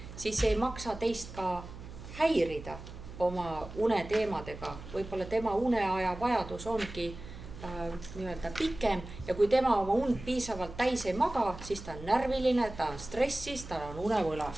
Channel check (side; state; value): right; noise; hum, 13 dB below the sound